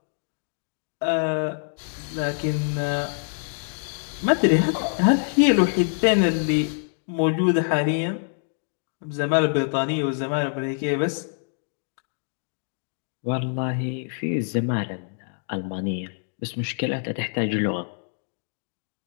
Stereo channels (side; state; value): right; silent; digital silence